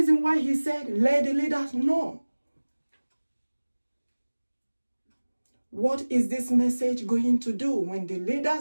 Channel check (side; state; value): both; inverted; correlation -1.00